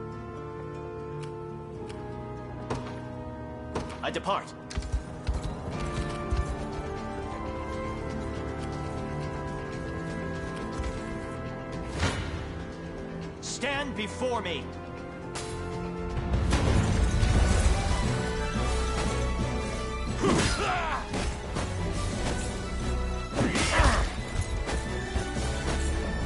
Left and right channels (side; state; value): both; identical; correlation 1.00